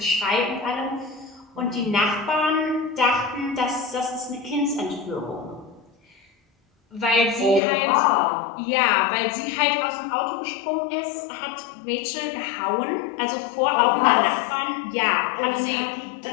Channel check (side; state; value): right; drops out; at 7.6 s